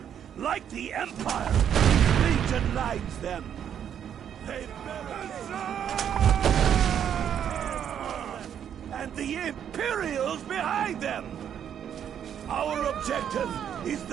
like the Empire. Legion lines them. They and the Imperials behind them! Our objective is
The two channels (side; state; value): left; quieter; 9.1 dB